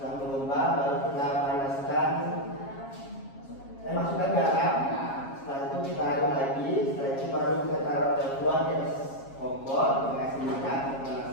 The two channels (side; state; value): right; late; 7.3 ms